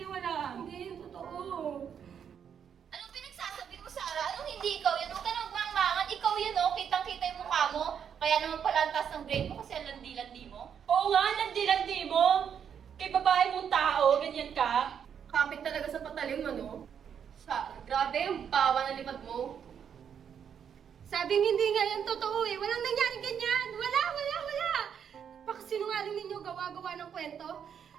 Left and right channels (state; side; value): quieter; left; 8.0 dB